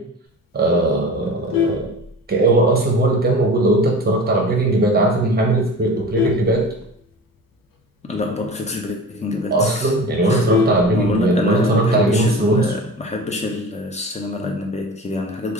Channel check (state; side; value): normal; both; correlation 0.35